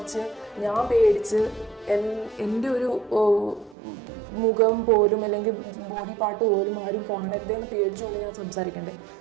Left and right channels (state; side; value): drops out; left; at 3.8 s